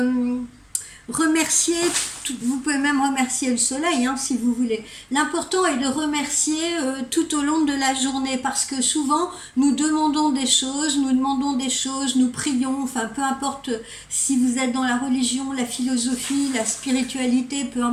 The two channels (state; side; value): identical; both; correlation 1.00